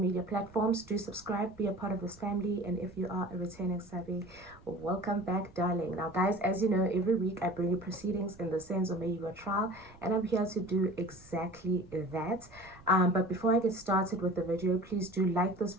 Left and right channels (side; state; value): right; noise; rumble, 23 dB below the sound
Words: platforms. Do subscribe, be a part of this family, and if you are a returning savvy, welcome back, darling. Now guys, as you know, every week I bring you proceedings in the Senzo Meyiwa trial, and I'm here to do exactly that. But before I get started with the video, please do like this